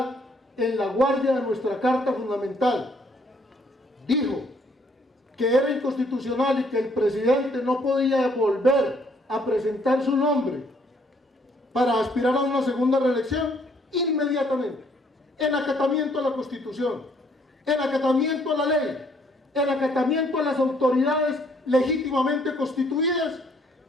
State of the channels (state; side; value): normal; both; correlation 0.65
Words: en la guardia de nuestra Carta Fundamental, dijo que era inconstitucional y que el presidente no podía volver a presentar su nombre para aspirar a una segunda reelección, inmediatamente, en acatamiento a la Constitución, en acatamiento a la ley, en acatamiento a las autoridades legítimamente constituidas